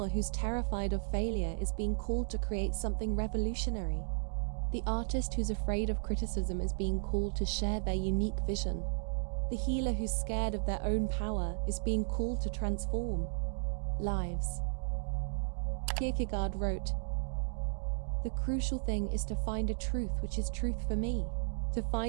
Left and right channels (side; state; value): left; silent; digital silence